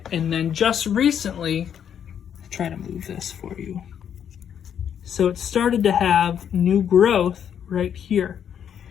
And then just recently, I'll try to move this for you. So it started to have new growth right here.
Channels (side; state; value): right; quieter; 8.7 dB